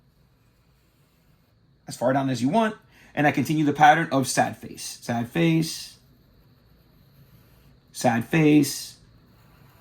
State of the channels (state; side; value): identical; both; correlation 1.00